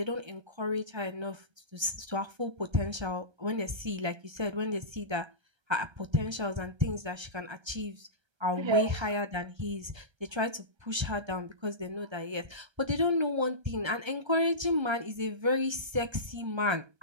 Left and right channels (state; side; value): late; left; 1.3 ms